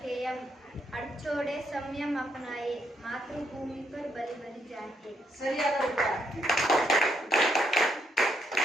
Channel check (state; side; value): normal; both; correlation 0.76